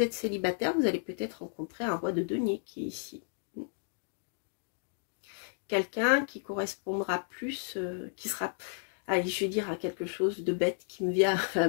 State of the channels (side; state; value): right; silent; digital silence